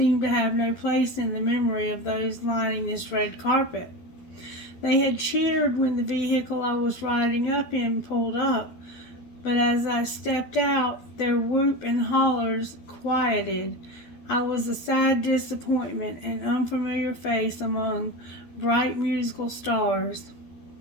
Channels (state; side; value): late; right; 12 ms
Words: to have no place in the memory of those lining this red carpet. They had cheered when the vehicle I was riding up in pulled up, but as I stepped out, their whoop and hollers quieted. I was a sad disappointment, an unfamiliar face among bright musical stars.